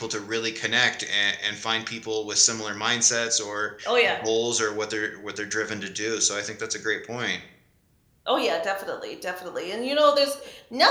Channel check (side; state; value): both; identical; correlation 1.00